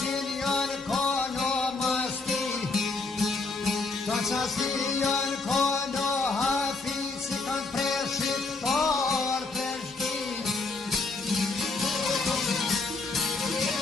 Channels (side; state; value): right; quieter; 3.8 dB